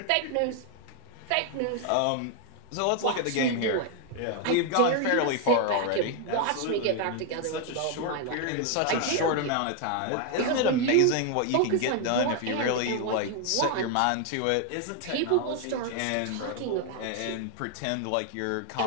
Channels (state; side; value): different; both; correlation 0.00